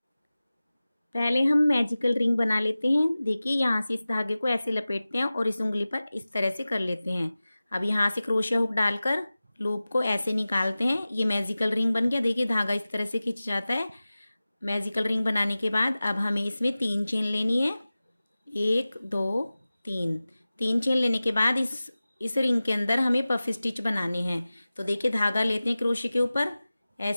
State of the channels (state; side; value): inverted; both; correlation -0.97